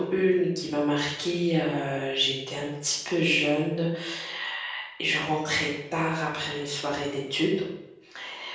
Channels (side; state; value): both; identical; correlation 1.00